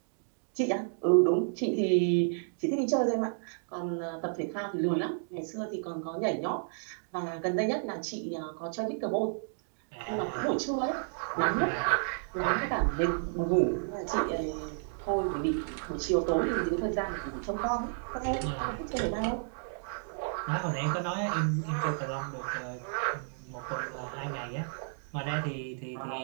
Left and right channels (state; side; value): silent; left; digital silence